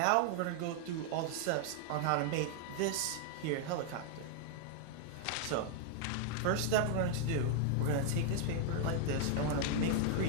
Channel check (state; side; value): different; both; correlation 0.00